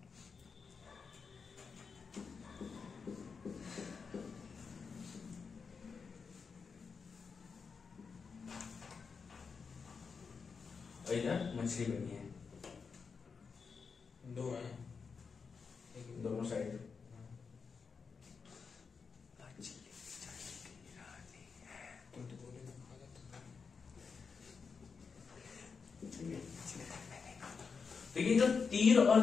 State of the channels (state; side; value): quieter; right; 5.4 dB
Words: और इधर मछली बनी है, दो है दोनों साइड। तुम तो बोले ना खा तो ये जो तीर और